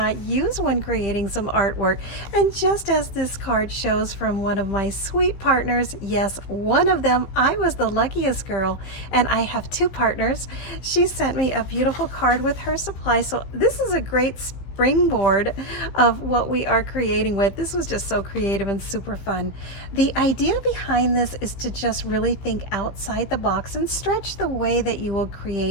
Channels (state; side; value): late; right; 16 ms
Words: use when creating some artwork. And just as this card shows from one of my sweet partners, yes, one of them, I was the luckiest girl, and I have 2 partners. She sent me a beautiful card with her supply, so this is a great springboard of what we are creating with. This was just so creative and super fun. The idea behind this is to just really think outside the box and stretch the way that you will